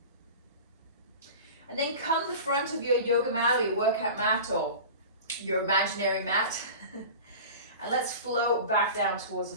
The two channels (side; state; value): both; inverted; correlation -0.35